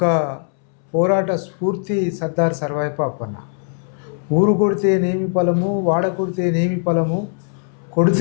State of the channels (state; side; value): silent; right; 66 dB below the other